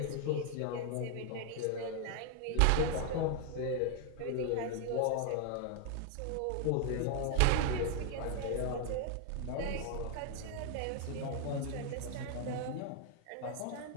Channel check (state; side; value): different; both; correlation 0.01